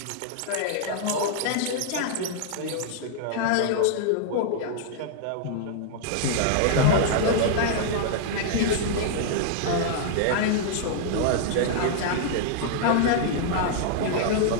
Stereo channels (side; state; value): both; different; correlation -0.01